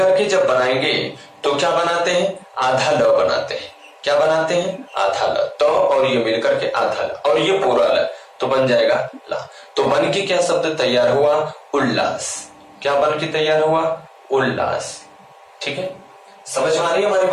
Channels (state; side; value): identical; both; correlation 1.00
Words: के जब बनाएंगे तो क्या बनाते हैं, आधा ल बनाते हैं, क्या बनाते हैं, आधा ल। तो और ये मिलकर के आधा ल, और ये पूरा ल, तो बन जाएगा ला। तो बन के क्या शब्द तैयार हुआ, उल्लास। क्या बन के तैयार हुआ, उल्लास, ठीक है। समझ में आ रही है हमारी